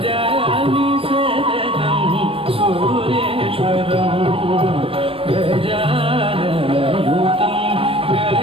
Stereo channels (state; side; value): late; left; 0.27 ms